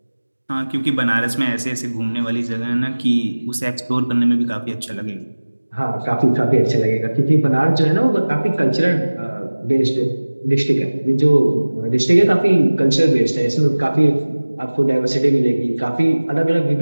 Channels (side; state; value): both; inverted; correlation -1.00